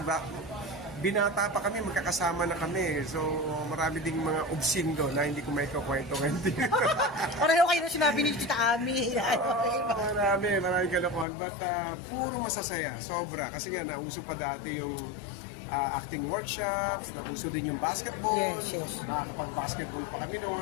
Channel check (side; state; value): right; drops out; at 11.2 s